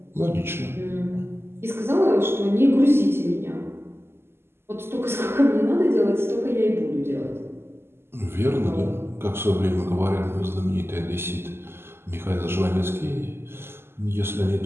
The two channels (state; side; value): late; left; 0.12 ms